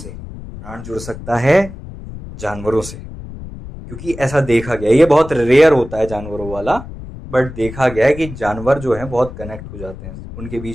प्राण जुड़ सकता है जानवरों से, क्योंकि ऐसा देखा गया। ये बहुत रेयर होता है जानवरों वाला, बट देखा गया है कि जानवर जो है बहुत कनेक्ट हो जाते हैं, उनके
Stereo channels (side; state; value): left; noise; rumble, 12 dB below the sound